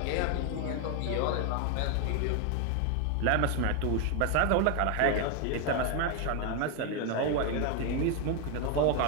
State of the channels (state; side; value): different; both; correlation 0.01